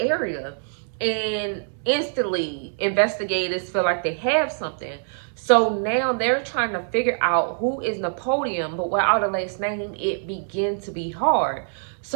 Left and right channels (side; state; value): left; silent; 62 dB below the other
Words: And instantly investigators feel like they have something. So now they're trying to figure out who is Napoleon, but without a last name, it began to be hard.